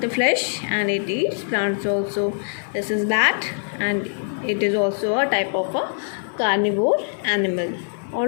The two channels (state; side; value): silent; right; digital silence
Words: the flesh and it eats plants also. This is bat and it is also a type of a carnivore animal.